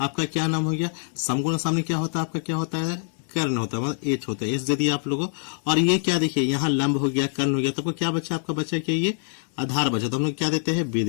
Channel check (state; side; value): silent; right; 62 dB below the other